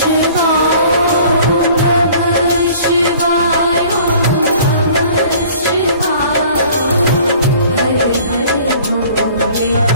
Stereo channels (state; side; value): inverted; both; correlation -0.51